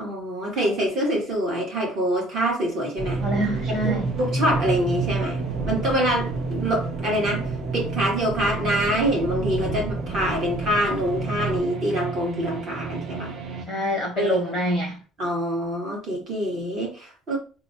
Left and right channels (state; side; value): normal; both; correlation 0.54